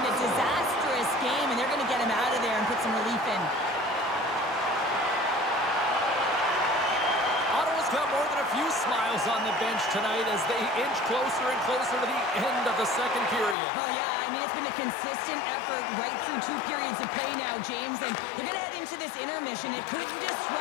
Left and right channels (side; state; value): right; drops out; at 13.6 s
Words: a disastrous game, and they're going to get him out of there and put some relief in. Ottawa's got more than a few few smiles on the bench tonight as they inch closer and closer to the end of the second period. Well, yeah, I mean, it's been a consistent effort right through 2 periods of play now, James, and they're going to head into this intermission. It could